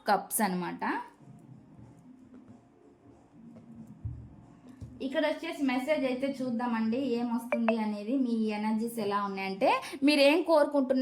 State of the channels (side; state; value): both; identical; correlation 1.00